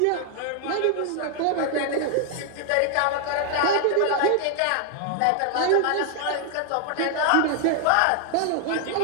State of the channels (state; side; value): different; both; correlation 0.00